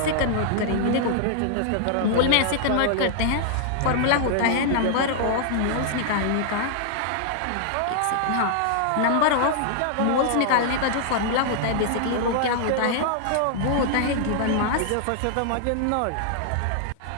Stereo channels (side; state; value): both; different; correlation -0.01